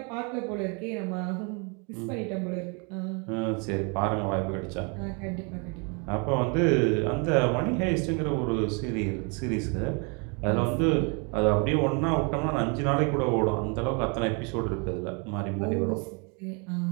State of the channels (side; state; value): left; quieter; 34.2 dB